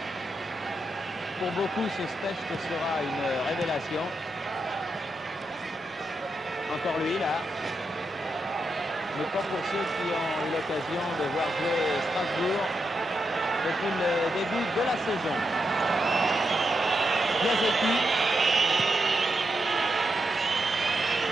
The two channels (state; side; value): normal; both; correlation 0.84